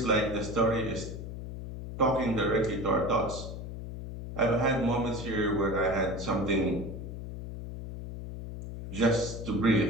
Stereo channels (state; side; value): noise; left; hum, 8 dB below the sound